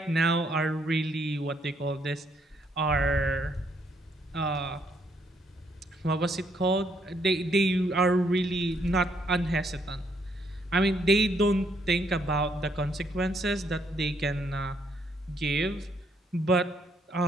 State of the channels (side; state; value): both; normal; correlation 0.72